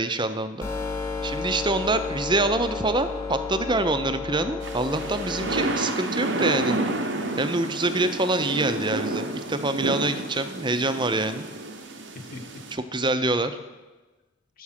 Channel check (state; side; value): normal; both; correlation 0.35